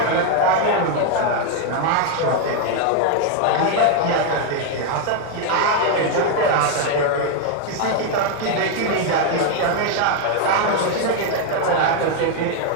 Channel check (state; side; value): different; both; correlation 0.01